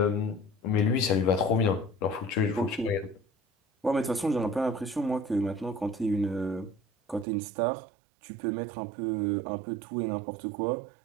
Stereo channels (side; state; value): left; drops out; at 7.2 s